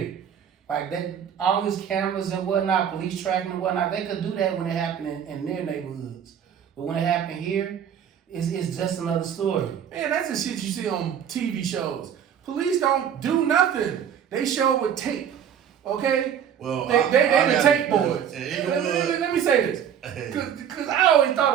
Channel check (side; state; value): left; quieter; 8.7 dB